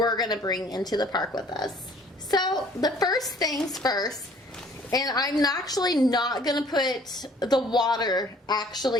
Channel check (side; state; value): both; normal; correlation 0.55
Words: gonna bring into the park with us. So the first things first, and I'm actually not gonna put the water